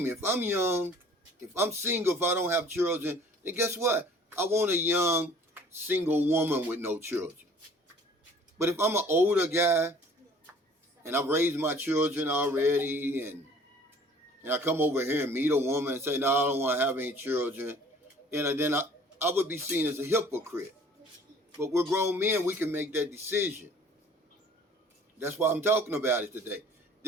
you. If I'm young, if I'm single, if I don't have children, then guess what? I want a young, single woman with no children. But if I'm an older guy, and I've raised my children already, and I come over here and meet a woman and say, no, I don't want to have any children, and then I would be seen as a hypocrite. But we're grown men, we can make that decision. That's why I'm talking about it today.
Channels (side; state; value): both; normal; correlation 0.52